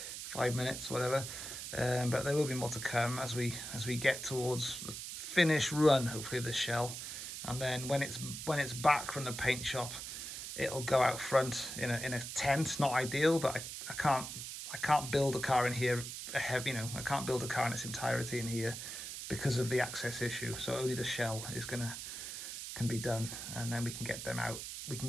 5 minutes, whatever. But there will be more to come as we get towards the finish run, hopefully, of this shell. And then when it's back from the paint shop, it'll go out front in a tent. Not ideal, but I can't build a car in here. I can't build a car in its entirety in here because of the access issue. So only the shell can be done, and then we can get them out. We can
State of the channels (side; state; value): right; noise; hiss, 7 dB below the sound